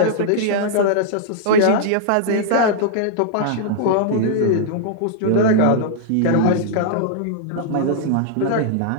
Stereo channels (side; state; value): both; different; correlation -0.01